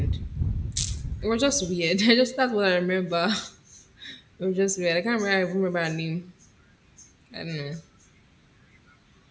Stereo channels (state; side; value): identical; both; correlation 1.00